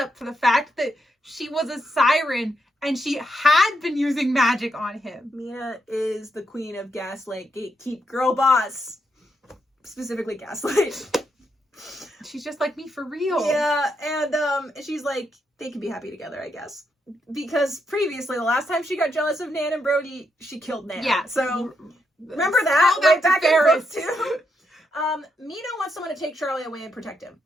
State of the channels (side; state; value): both; normal; correlation 0.80